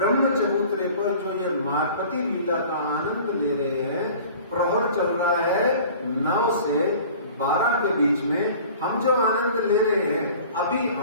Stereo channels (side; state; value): both; inverted; correlation -0.45